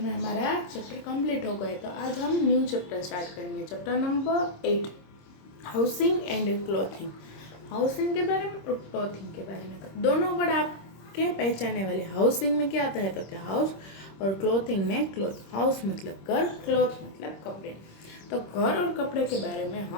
हमारा चैप्टर कंप्लीट हो गए, तो आज हम न्यू चैप्टर स्टार्ट करेंगे। Chapter number 8, housing and clothing. Housing के बारे में और क्लोथिंग के बारे में दोनों वर्ड आपके पहचानने वाले। हाउसिंग में क्या आता है तो क्या हाउस, और क्लोथिंग में क्लोथ। हाउस मतलब घर, क्लोथ मतलब कपड़े। तो घर और कपड़े के बारे में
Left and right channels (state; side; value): late; right; 26 ms